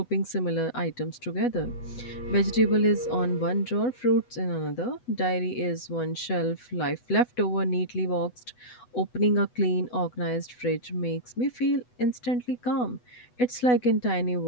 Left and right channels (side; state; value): right; late; 8.1 ms